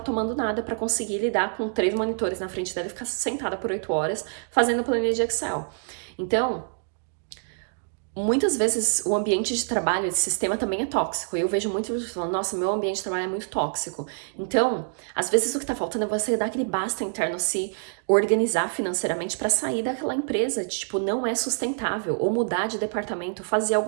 nada pra conseguir lidar com 3 monitores na frente dela e ficar sentada por 8 horas fazendo planilha de Excel. Então, muitas vezes o ambiente de trabalho, esse sistema também é tóxico. E eu vejo muitas pessoas falando, nossa, meu ambiente de trabalho é muito tóxico. Então, às vezes o que tá faltando é você dar aquele basta interno, se organizar financeiramente pra sair daquela empresa, tipo, não é sustentável. Ou mudar de departamento, fazer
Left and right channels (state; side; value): silent; left; digital silence